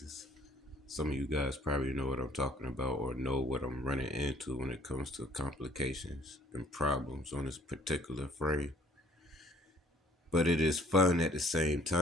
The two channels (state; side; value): normal; both; correlation 0.58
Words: Some of you guys probably know what I'm talking about or know what I'm running into when it comes to complications and problems on this particular frame. But it is fun at the same